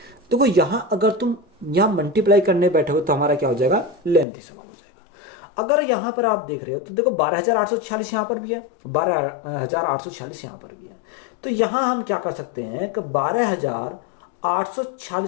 देखो यहां अगर तुम यहां मल्टीप्लाई करने बैठोगे तो हमारा क्या हो जाएगा, लेंथी सवाल हो जाएगा। अगर यहां पर आप देख रहे हो तो देखो 12,846 यहां पर भी है, 12,846 यहां पर भी है। तो यहां हम क्या कर सकते हैं कि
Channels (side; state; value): right; drops out; at 4.2 s